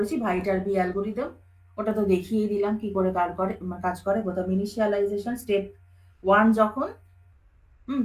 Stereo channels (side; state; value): both; identical; correlation 1.00